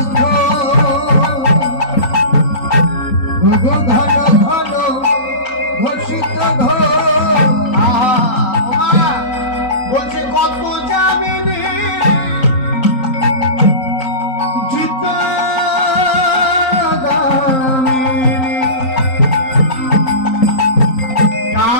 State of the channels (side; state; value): right; late; 3.9 ms